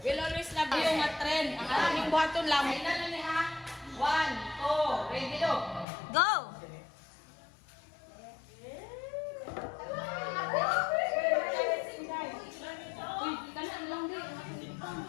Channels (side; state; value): right; drops out; at 5.9 s